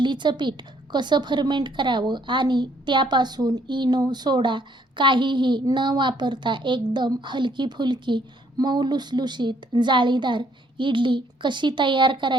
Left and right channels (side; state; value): both; normal; correlation 0.67